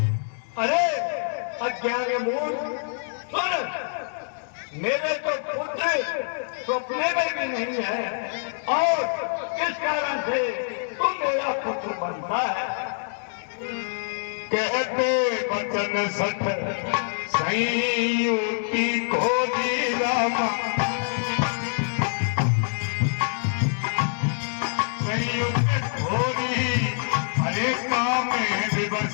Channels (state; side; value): silent; right; digital silence